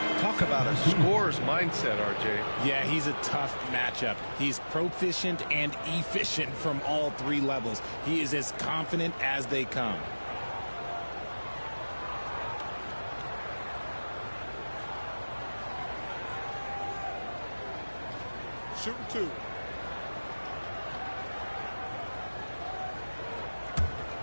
Talk about a scorer's mindset, RJ. Yeah, he's a tough matchup. He's proficient and efficient from all 3 levels. He is as confident as they come. Shooting 2.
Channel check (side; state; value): both; inverted; correlation -1.00